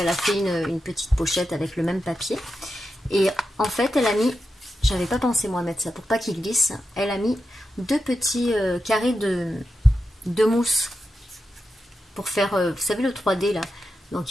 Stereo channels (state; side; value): normal; both; correlation 0.88